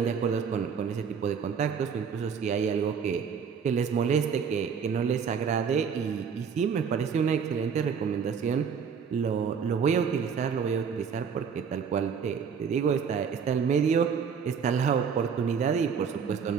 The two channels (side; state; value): left; quieter; 6.6 dB